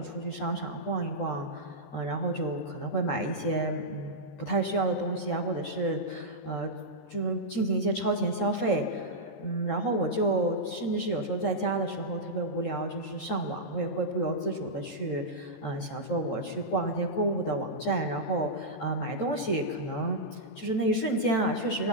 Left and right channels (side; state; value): right; late; 13 ms